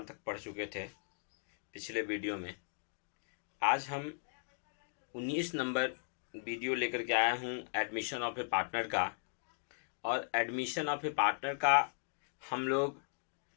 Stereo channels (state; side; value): silent; right; digital silence